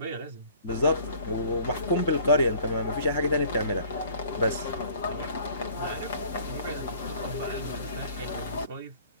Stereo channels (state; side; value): inverted; both; correlation -0.51